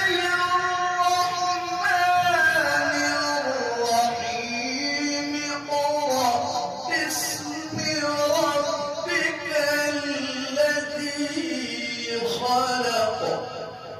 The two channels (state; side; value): identical; both; correlation 1.00